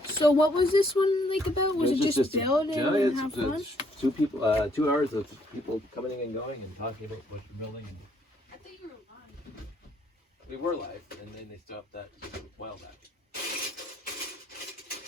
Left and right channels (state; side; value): normal; both; correlation 0.68